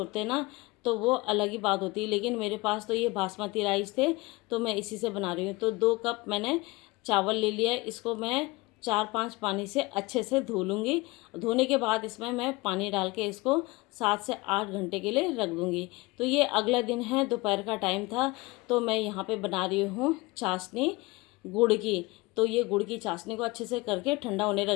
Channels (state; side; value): quieter; right; 22.9 dB